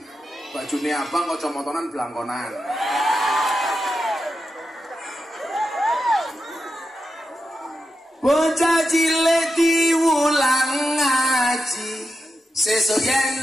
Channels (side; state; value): both; normal; correlation 0.88